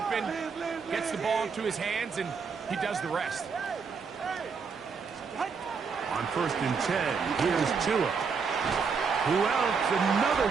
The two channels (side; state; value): left; quieter; 5.5 dB